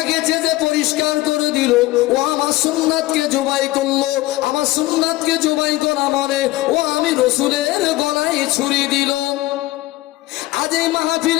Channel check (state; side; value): quieter; right; 18.2 dB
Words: চেঁচে পরিষ্কার করে দিল, ও আমার সুন্নাতকে জবাই করলো। আমার সুন্নাতকে জবাই করা মানে ও আমি রসুলের গলায় ছুরি দিল। আজ এই